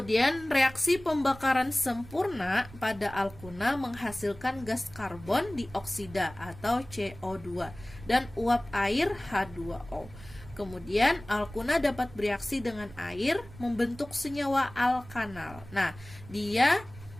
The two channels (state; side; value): noise; right; rumble, 18 dB below the sound